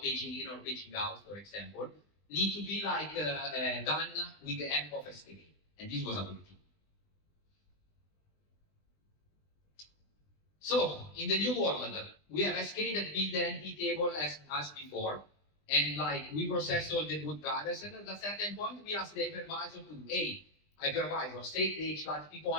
paging in or paging out, for example, need to be like done with the help of SK. And this was ability. So in the new world, we have SK that build the NT table as before, and like we process all the boot drivers, and at a certain point we ask the hypervisor to, hey, hypervisor, set the HLAT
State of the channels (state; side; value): late; right; 20 ms